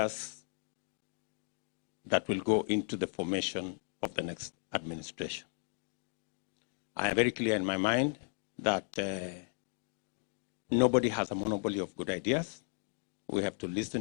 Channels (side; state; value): right; silent; 54 dB below the other